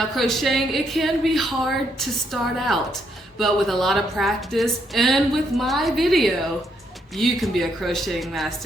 crocheting, it can be hard to start out, but with a lot of practice and with my video, you can be a crocheting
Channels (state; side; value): normal; both; correlation 0.75